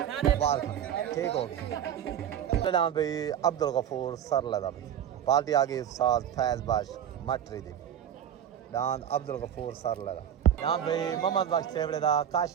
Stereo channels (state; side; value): quieter; left; 9.7 dB